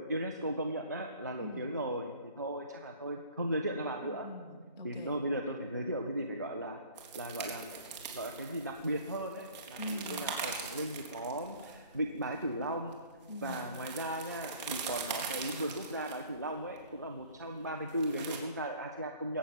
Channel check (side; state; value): both; inverted; correlation -0.50